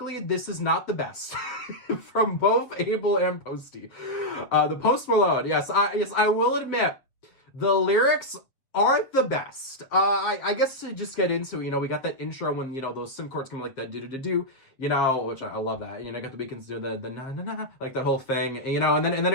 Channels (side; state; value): right; late; 7.3 ms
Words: this is not the best from both Abel and Posty. The Post Malone, yes, I will admit, the lyrics aren't the best. I guess to just get into it, we got that intro when, those sim chords come like that do-do-do-do, which I love that. Got the Weeknd's do the na-na-na, like that whole thing, and then